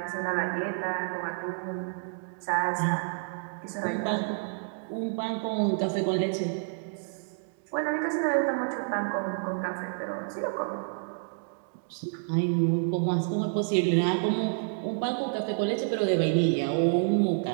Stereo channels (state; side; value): silent; left; digital silence